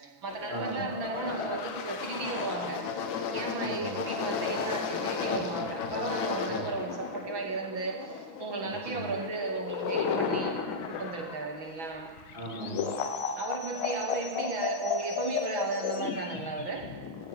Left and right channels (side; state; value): left; late; 6.1 ms